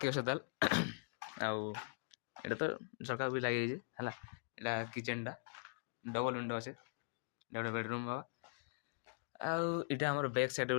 अच्छे ताल आउ एटा तो झरका भी लगे है एटा किचन टा डबल विंडो अच्छे गोटे बेडरूम हवा आउ इटा हमर बैक साइड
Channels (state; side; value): silent; right; digital silence